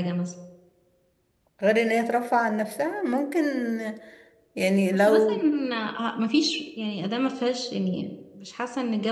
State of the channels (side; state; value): both; identical; correlation 1.00